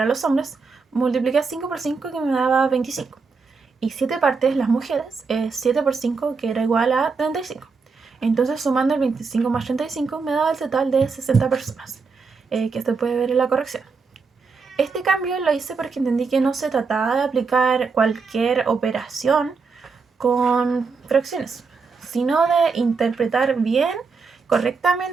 los hombres, multipliqué 5 por 5, que me daba 25. Y 7 partes, las mujeres, 7 por 5, que era igual a 35. Entonces, sumando el 25 más 35, me daba el total de 60 personas, que se puede ver en la corrección. Este cambio lo hice porque entendí que no se trataba de aplicar cualquier operación con fracciones, sino de interpretar bien,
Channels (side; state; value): left; quieter; 4.8 dB